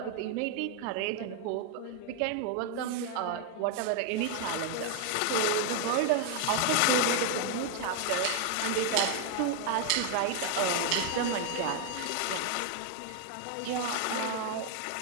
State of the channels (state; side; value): different; both; correlation 0.00